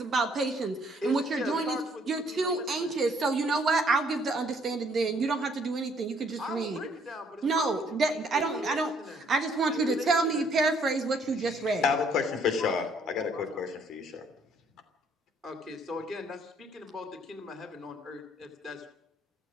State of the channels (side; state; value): both; normal; correlation 0.65